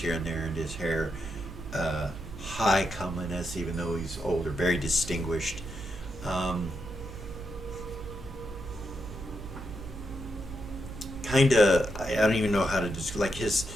and there in his hair. High comeliness, even though he's older, very distinguished. I don't even know how to describe, like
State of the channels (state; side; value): noise; right; hum, 12 dB below the sound